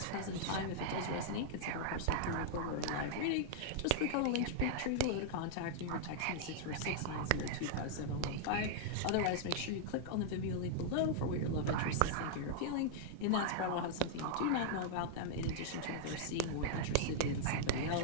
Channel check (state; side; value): different; both; correlation -0.01